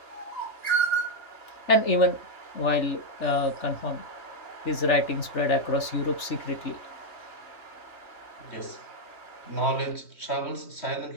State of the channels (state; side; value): late; right; 3.4 ms